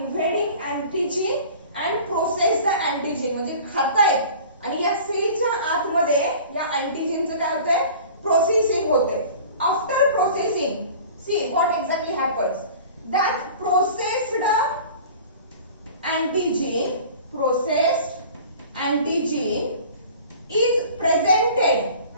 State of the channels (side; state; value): both; inverted; correlation -0.43